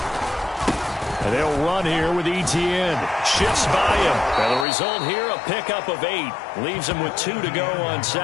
And they'll run here with ETN. Shifts by him. And the result here, a pickup of 8. Leaves him with 2 to go on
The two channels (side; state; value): right; drops out; at 4.7 s